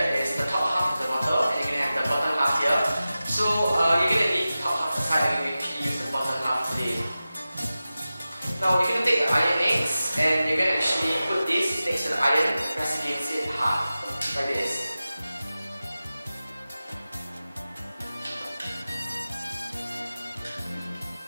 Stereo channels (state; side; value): inverted; both; correlation -0.95